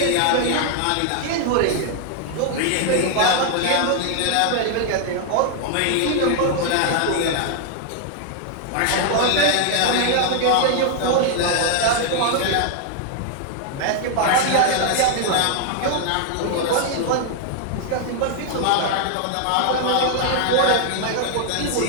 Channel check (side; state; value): both; different; correlation 0.00